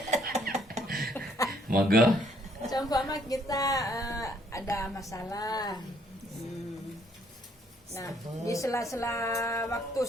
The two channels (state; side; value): normal; both; correlation 0.67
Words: Monggo. Seumpama kita ada masalah. Nah, di sela-sela waktu